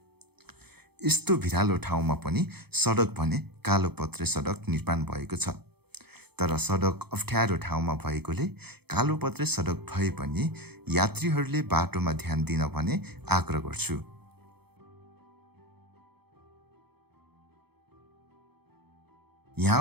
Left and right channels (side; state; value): left; late; 0.97 ms